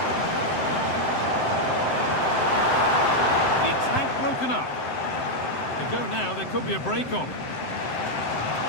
The attack broken up. They go now, there could be a break on.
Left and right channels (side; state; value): right; late; 7.7 ms